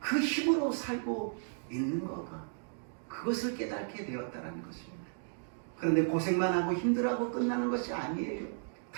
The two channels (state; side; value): silent; left; digital silence